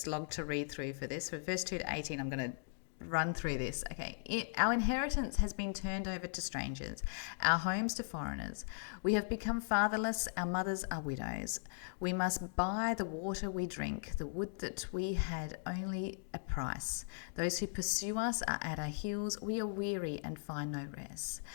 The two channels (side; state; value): right; silent; digital silence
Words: to read through for this. For verse 2 to 18, I'm going to run through this. Okay. Our inheritance has been turned over to strangers, our homes to foreigners. We have become fatherless, our mothers are widows. We must buy the water we drink, the wood that we had only a price. Those who pursue us are at our heels. We are weary and find no rest.